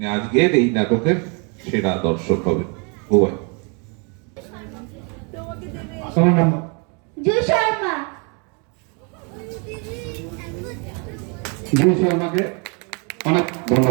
আজকের এই নাটকের সেরা দর্শক হবেন। উভয় আমার নাম জুই শর্মা। জুই শর্মাকে অনেক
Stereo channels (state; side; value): quieter; left; 34.8 dB